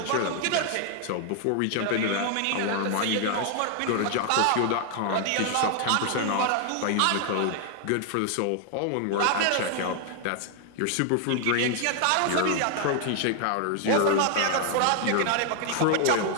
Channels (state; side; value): different; both; correlation 0.00